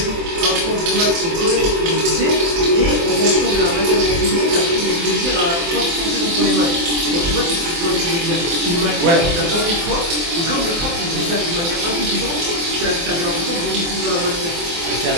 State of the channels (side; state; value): left; late; 24 ms